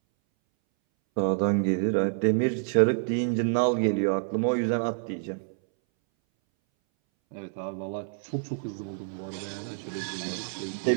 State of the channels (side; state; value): left; silent; 60 dB below the other